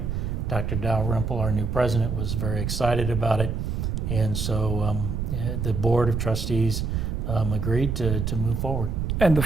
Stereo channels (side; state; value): right; noise; rumble, 2 dB below the sound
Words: Dr. Dalrymple, our new president, was very excited about it. And so the board of trustees agreed to move forward. And the